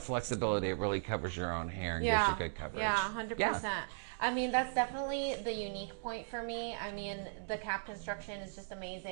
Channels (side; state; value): left; silent; digital silence